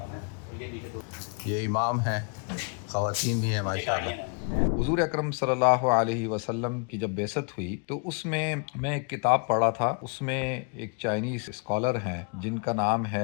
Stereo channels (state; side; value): quieter; right; 37.4 dB